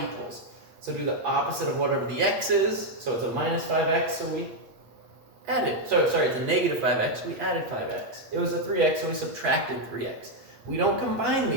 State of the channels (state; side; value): late; left; 8.4 ms